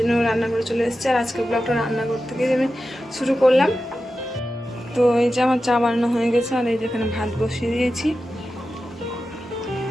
রান্না করে চলে এসেছি। আর আজকে ব্লগটা রান্নাঘর থেকে আমি শুরু করলাম। তো এই যে আমার চা বানানো হয়ে গেছে, আর এই যেখানে ভাত বসিয়ে দিয়েছি।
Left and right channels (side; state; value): both; normal; correlation 0.92